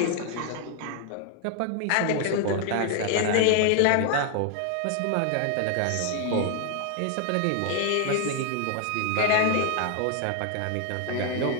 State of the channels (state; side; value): different; both; correlation 0.00